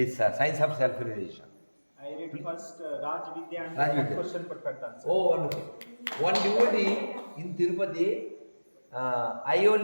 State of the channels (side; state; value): both; inverted; correlation -1.00